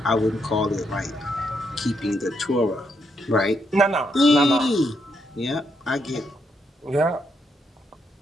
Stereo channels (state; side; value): normal; both; correlation 0.78